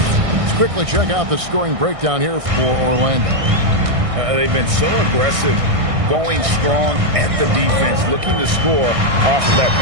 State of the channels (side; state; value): left; late; 1.6 ms